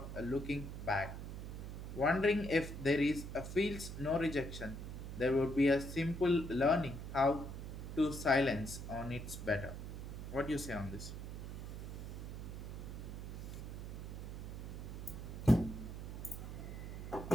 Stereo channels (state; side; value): noise; right; hum, 7 dB below the sound